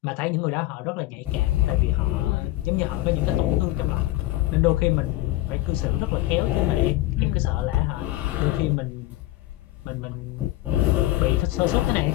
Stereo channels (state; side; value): quieter; right; 16.9 dB